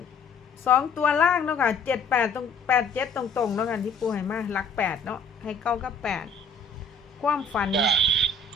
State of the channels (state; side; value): quieter; right; 3.8 dB